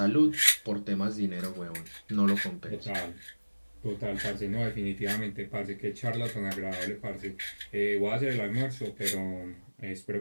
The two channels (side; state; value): both; inverted; correlation -1.00